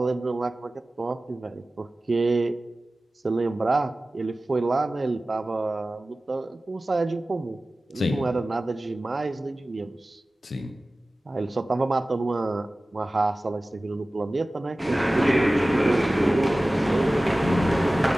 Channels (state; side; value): normal; both; correlation 0.97